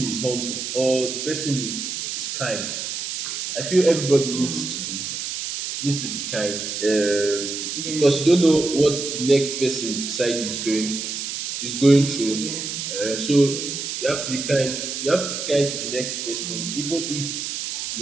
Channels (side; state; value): right; noise; hiss, 5 dB below the sound